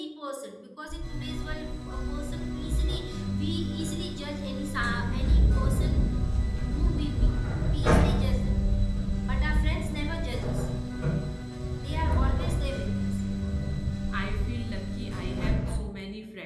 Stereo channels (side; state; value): both; identical; correlation 1.00